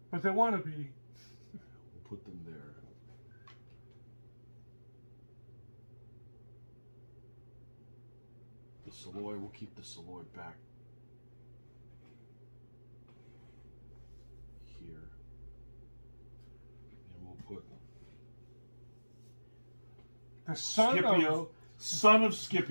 But they want to be. We'll put them there. The Soloi, we'll keep the Soloi back here. And we'll put The son Scipio, of... son of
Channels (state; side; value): inverted; both; correlation -1.00